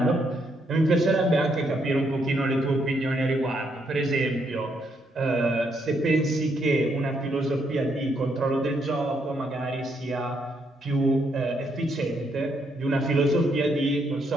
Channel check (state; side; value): normal; both; correlation 0.75